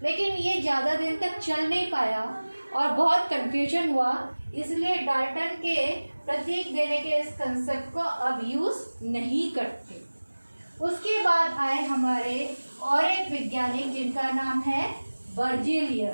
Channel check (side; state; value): both; inverted; correlation -1.00